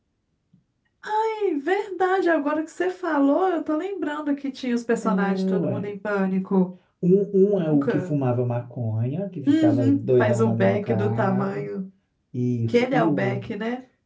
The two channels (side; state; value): both; identical; correlation 1.00